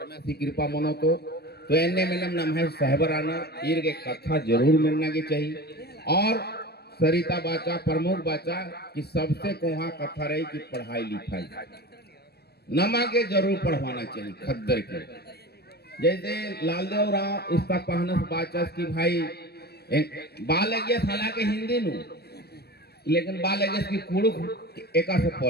की कृपा मनो तो एने में नाम है साहबर आना इर के कथा जरूर मिलना की चाहिए और सरिता बाचा प्रमुख बाचा कि सबसे कोहा कथा रही कि पढ़ाई लिखाई नमा के जरूर पढ़वाना चाहिए खद्दर के। जैसे लालदेव राव इसका पहनस बाचस कि भाई बाल लगे साला के हिंदी नु लेकिन बाल लगे की कुड़ुक एका से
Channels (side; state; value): right; late; 0.47 ms